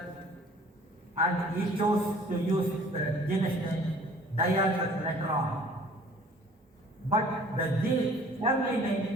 and he chose to use the genus name Diathus later on. But the family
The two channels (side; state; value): both; normal; correlation 0.51